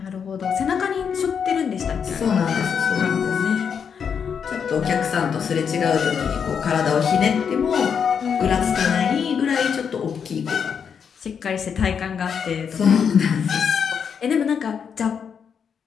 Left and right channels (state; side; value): quieter; right; 7.0 dB